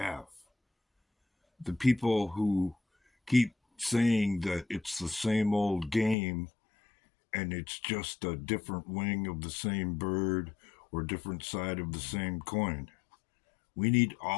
The people who keep saying that it's the same old game and it's just a different wing of the same bird or different side of the same coin. We need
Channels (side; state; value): right; drops out; at 6.2 s